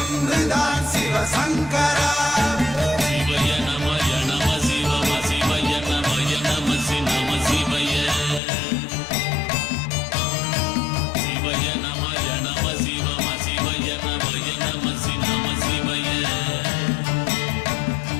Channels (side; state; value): right; drops out; at 8.4 s